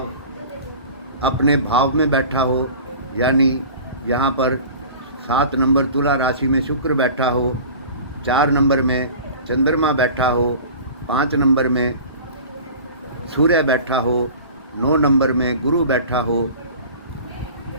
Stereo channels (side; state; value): both; inverted; correlation -0.40